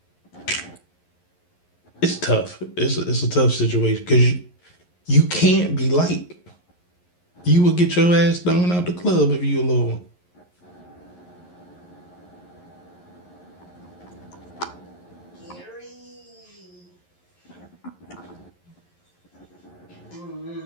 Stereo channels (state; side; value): late; right; 11 ms